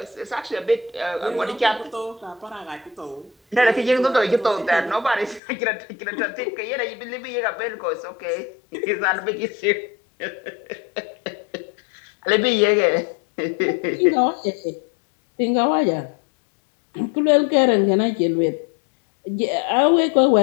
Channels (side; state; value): right; drops out; at 5.4 s